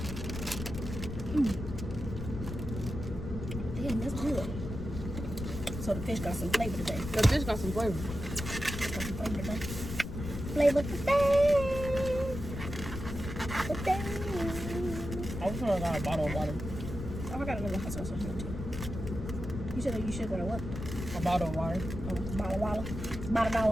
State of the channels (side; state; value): left; noise; rumble, 7 dB below the sound